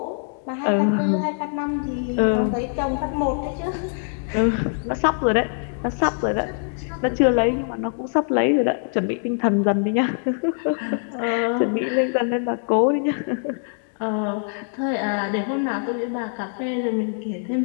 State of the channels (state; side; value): silent; right; 63 dB below the other